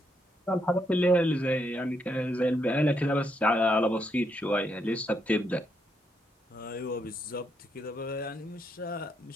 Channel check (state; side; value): normal; both; correlation 0.77